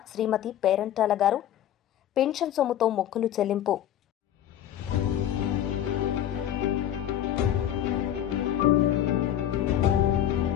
శ్రీమతి పేరంటాల గారు పెన్షన్ సొమ్ముతో మొక్కులు చెల్లింపు.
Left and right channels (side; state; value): right; quieter; 11.0 dB